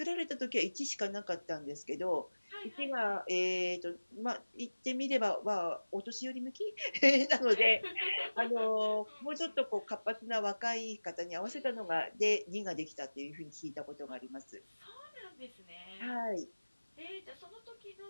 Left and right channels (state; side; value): inverted; both; correlation -1.00